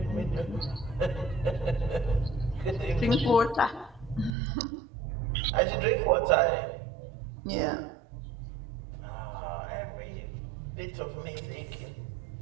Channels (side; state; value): left; drops out; at 4.3 s